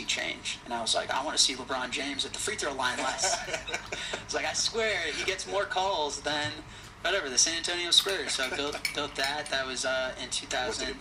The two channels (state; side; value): identical; both; correlation 1.00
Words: change? And I was like, I want to see LeBron James at the free throw line less. It's like, I swear he gets more calls than whatever, the San Antonio Spurs. So I built that. That was in